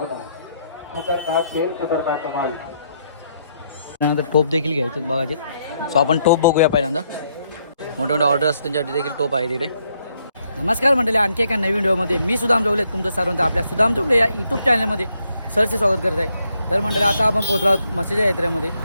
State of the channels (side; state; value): both; inverted; correlation -0.74